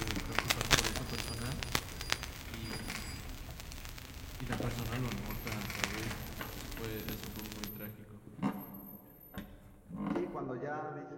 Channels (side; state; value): both; identical; correlation 1.00